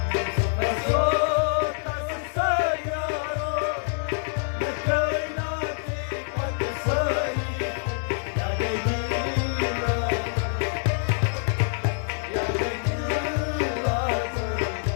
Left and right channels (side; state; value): right; silent; digital silence